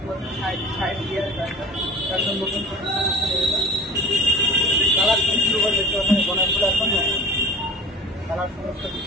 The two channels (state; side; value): normal; both; correlation 0.42